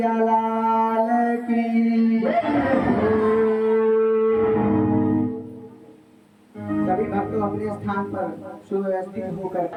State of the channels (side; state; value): both; identical; correlation 1.00